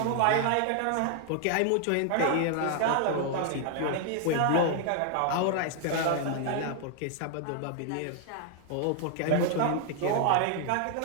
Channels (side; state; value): both; different; correlation 0.00